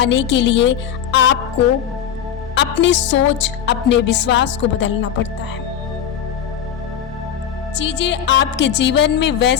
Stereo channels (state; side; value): quieter; right; 9.1 dB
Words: के लिए आपको अपनी सोच, अपने विश्वास को बदलना पड़ता है। चीजें आपके जीवन में